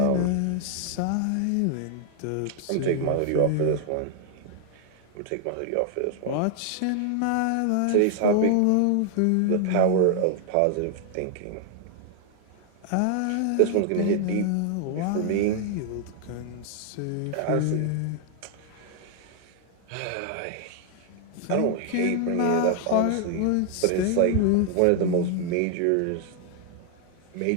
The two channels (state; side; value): different; both; correlation 0.00